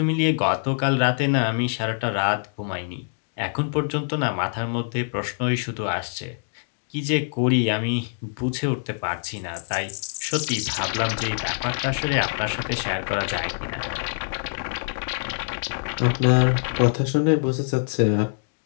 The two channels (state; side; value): silent; right; digital silence